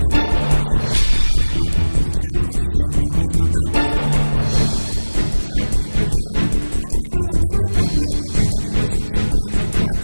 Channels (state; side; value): inverted; both; correlation -1.00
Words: गेहूं की खरीद नहीं किए जाने का ठीकरा मोदी सहित खट्टर सरकार के सिर पर फोड़ते हुए दोनों को किसान विरोधी ठहराया। मामला बिगड़ता देखकर मार्केट कमेटी के सचिव नरेंद्र कुमार